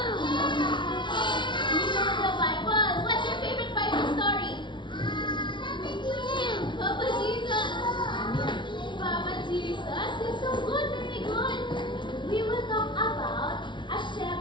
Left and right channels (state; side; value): late; right; 0.23 ms